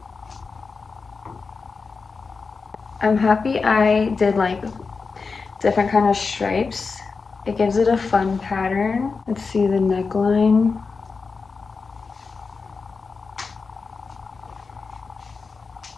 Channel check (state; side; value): quieter; right; 4.6 dB